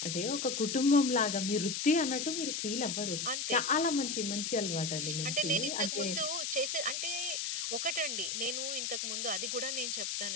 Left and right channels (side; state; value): left; noise; hiss, 2 dB below the sound